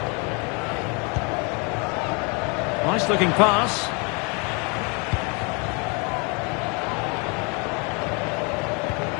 Nice looking pass.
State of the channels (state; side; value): quieter; right; 32.2 dB